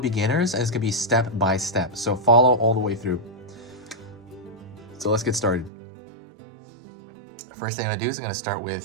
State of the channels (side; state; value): left; drops out; at 5.7 s